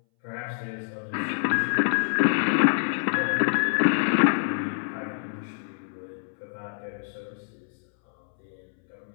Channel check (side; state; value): right; silent; 61 dB below the other